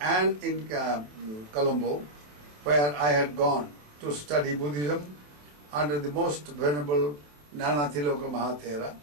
in Colombo, where I had gone to study Buddhism under the most venerable Nanathiloka Mahathera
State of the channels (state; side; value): late; left; 27 ms